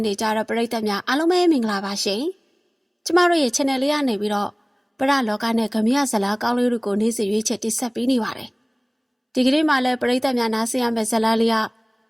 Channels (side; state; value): both; identical; correlation 1.00